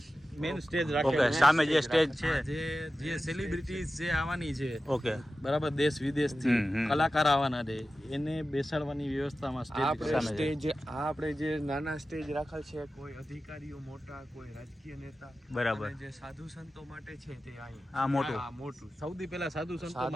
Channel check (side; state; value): both; normal; correlation 0.94